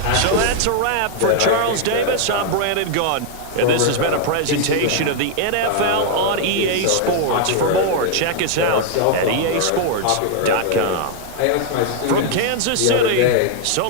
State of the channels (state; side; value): different; both; correlation 0.00